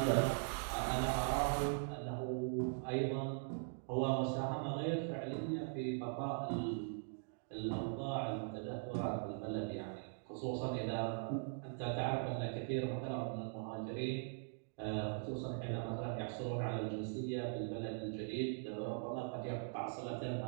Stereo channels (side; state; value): left; silent; digital silence